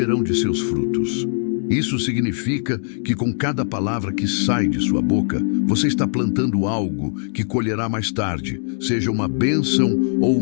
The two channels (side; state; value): right; silent; 65 dB below the other